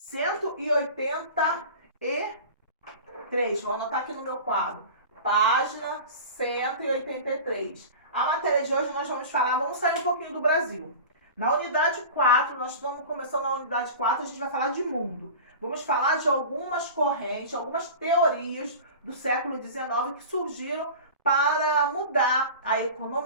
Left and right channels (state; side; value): inverted; both; correlation -0.35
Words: Vou anotar aqui no meu quadro. Página 183. A matéria de hoje nós vamos sair um pouquinho do Brasil. Na unidade 4, nós estamos começando na unidade 4, a gente vai falar de mundo. Vamos falar de algumas correntes, algumas teorias do século XIX que surgiram para mudar a